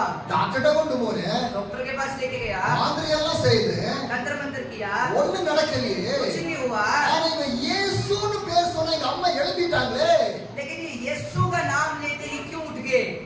டாக்டர்ட்ட கொண்டு போறேன். डॉक्टर के पास लेके गया. மாந்திரி எல்லாம் செய்து तंत्र मंत्र किया. ஒண்ணும் நடக்கலையே. कुछ नहीं हुआ. ஆனா இவன் இயேசுன்னு பேர் சொன்ன எங்க அம்மா எழுப்பிட்டாங்களே. लेकिन ये यीशु का नाम लेते ही क्यों उठ गए.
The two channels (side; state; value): both; identical; correlation 1.00